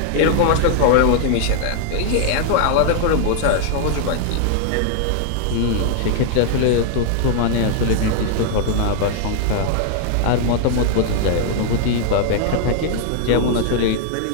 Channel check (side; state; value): both; different; correlation 0.00